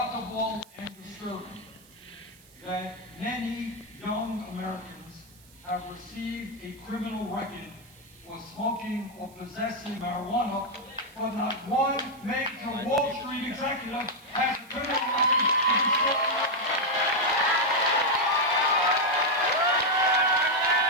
and disturbing that many young Americans have received a criminal record for smoking or possessing marijuana, but not one major Wall Street executive has a criminal record for destroying marijuana.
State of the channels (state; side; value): noise; right; hiss, 26 dB below the sound